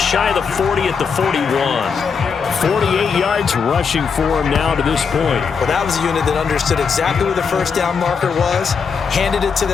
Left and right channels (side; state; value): right; quieter; 5.9 dB